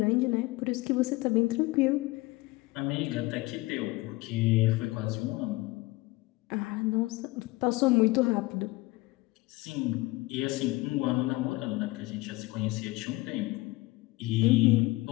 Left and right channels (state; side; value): quieter; right; 20.8 dB